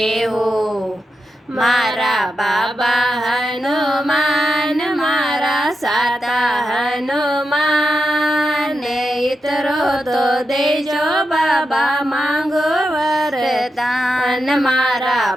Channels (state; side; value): normal; both; correlation 0.87